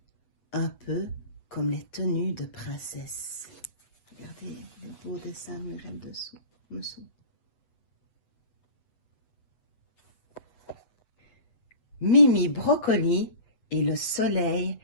un peu comme les tenues de princesse. Regardez le beau dessin mural dessous. Mimi Broccoli et le soleil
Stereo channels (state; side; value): late; right; 7.8 ms